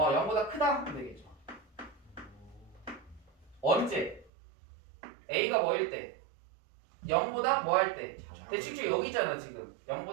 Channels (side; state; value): left; drops out; at 4.3 s